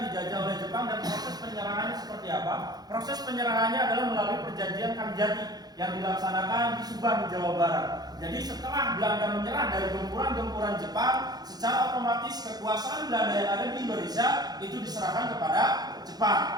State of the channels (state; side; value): late; left; 0.19 ms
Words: dijajah oleh Jepang, dan proses penyerahannya seperti apa? Proses penyerahannya adalah melalui perjanjian Kalijati yang dilaksanakan di Subang, Jawa Barat. Jadi setelah Belanda menyerah dari gempuran-gempuran Jepang, secara otomatis kekuasaan Belanda yang ada di Indonesia itu diserahkan kepada